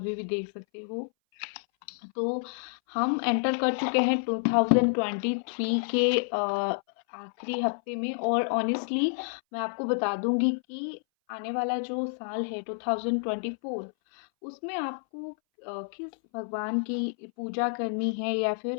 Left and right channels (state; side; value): silent; right; 59 dB below the other